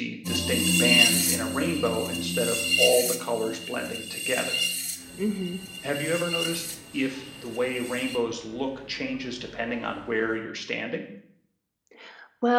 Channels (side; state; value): both; identical; correlation 1.00